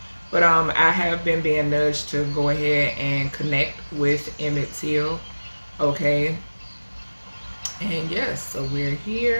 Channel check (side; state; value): both; inverted; correlation -1.00